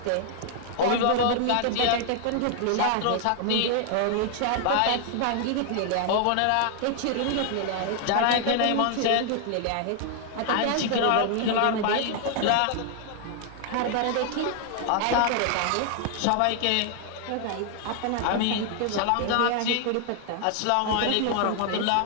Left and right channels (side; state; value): both; different; correlation 0.00